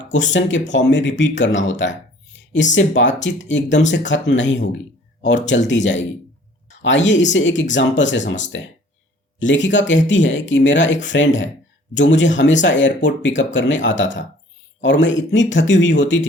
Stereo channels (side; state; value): both; normal; correlation 0.53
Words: क्वेश्चन के फॉर्म में रिपीट करना होता है। इससे बातचीत एकदम से खत्म नहीं होगी और चलती जाएगी। आइए इसे एक एग्जाम्पल से समझते हैं। लेखिका कहती है कि मेरा एक फ्रेंड है जो मुझे हमेशा एयरपोर्ट पिकअप करने आता था और मैं इतनी थकी हुई होती